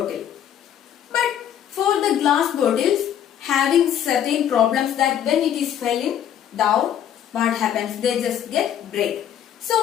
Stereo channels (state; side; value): quieter; right; 9.8 dB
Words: But for the glass bottles, having certain problems that when it is falling down, what happens? They just get break.